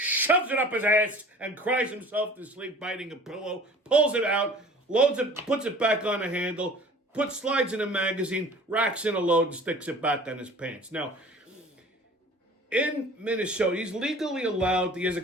it up his ass, and cries himself to sleep biting a pillow, pulls it out, loads it, puts it back on the handle, slides in a magazine, racks in a load, and sticks it back on his pants. Now, in Minnesota, he's legally allowed, he has a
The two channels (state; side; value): normal; both; correlation 0.45